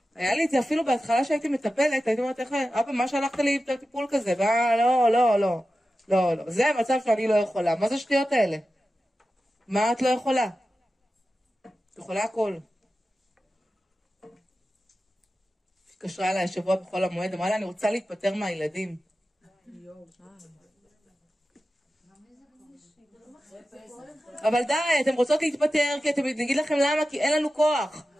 היה לי את זה אפילו בהתחלה שהייתי מטפלת, הייתי אומרת, אבא, מה שלחת לי טיפול כזה? לא. זה המצב שאני לא יכולה. מה זה שטויות האלה? מה את לא יכולה? את יכולה הכל. התקשרה אליי השבוע בכל המועד, אמרה לה, אני רוצה להתפטר מהילדים. אבל די, אתם רוצות להתפטר, כי אתם נגיד לכם למה, כי אין לנו כוח.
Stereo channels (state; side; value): normal; both; correlation 0.93